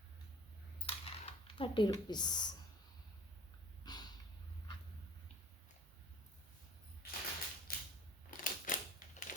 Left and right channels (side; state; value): both; normal; correlation 0.49